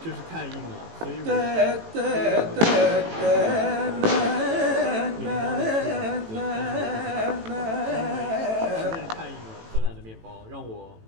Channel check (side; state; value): left; late; 18 ms